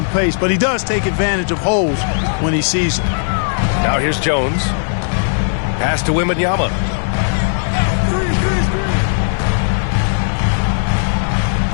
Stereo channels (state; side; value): silent; right; digital silence